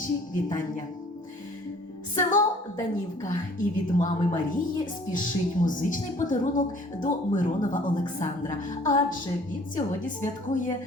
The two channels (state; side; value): normal; both; correlation 0.53